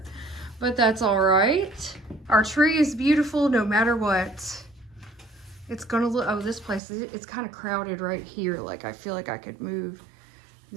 but that's all right. Our tree is beautiful no matter what. It's gonna look, oh, this place, it's kind of crowded right here. Like, I feel like I could move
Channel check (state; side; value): drops out; left; at 6.8 s